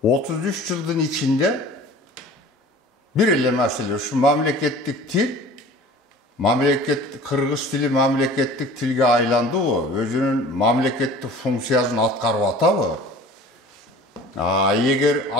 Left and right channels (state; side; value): normal; both; correlation 0.44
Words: 33 жылдын ичинде бир эле маселе ушу мамлекеттик тил, кыргыз тили мамлекеттик тилге айландыбы, өзүнүн мамлекеттик функциясын аткарып атабы? Эгер